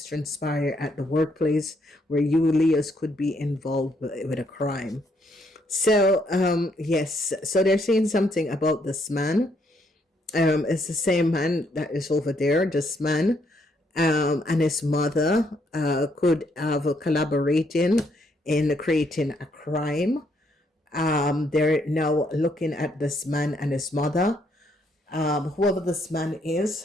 transpired at the workplace where you Leos could be involved with a crime. So yes, so they're saying something about this man. It's the same man that is over there. This man and his mother could have collaborating in creating a crime. They're now looking at this man and his mother. Whoever this man is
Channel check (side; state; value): both; normal; correlation 0.72